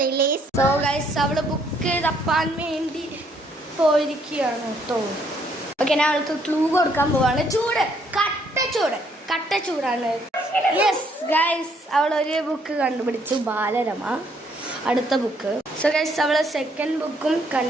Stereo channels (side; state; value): both; normal; correlation 0.68